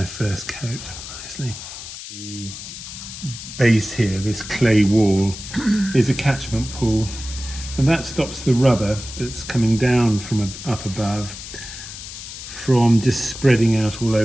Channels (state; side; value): noise; left; hiss, 11 dB below the sound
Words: first coat nicely. The base here, this clay wall, is a catchment pool, and that stops the rubber that's coming down from up above from just spreading out all